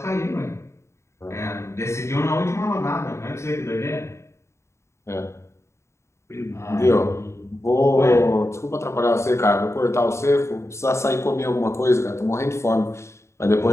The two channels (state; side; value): late; right; 0.13 ms